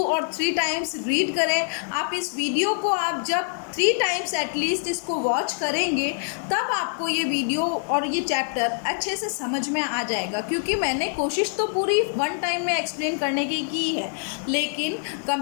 और 3 टाइम्स रीड करें। आप इस वीडियो को आप जब 3 टाइम्स एटलीस्ट इसको वॉच करेंगे तब आपको ये वीडियो और ये चैप्टर अच्छे से समझ में आ जाएगा। क्योंकि मैंने कोशिश तो पूरी 1 टाइम में एक्सप्लेन करने की है, लेकिन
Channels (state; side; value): silent; right; 62 dB below the other